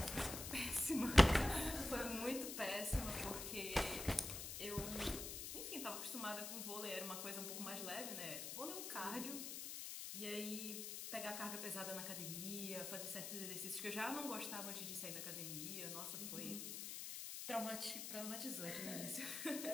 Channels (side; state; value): left; noise; hiss, 5 dB below the sound